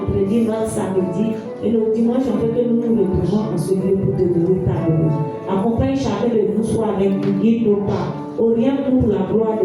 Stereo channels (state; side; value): identical; both; correlation 1.00